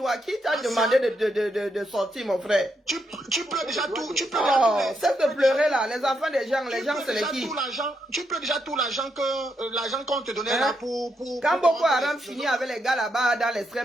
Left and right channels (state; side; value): normal; both; correlation 0.81